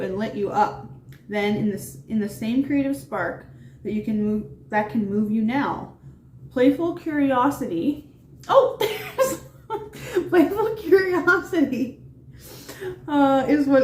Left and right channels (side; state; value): both; identical; correlation 1.00